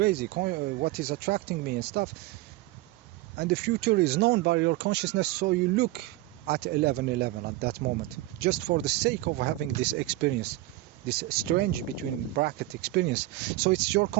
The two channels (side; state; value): left; quieter; 17.4 dB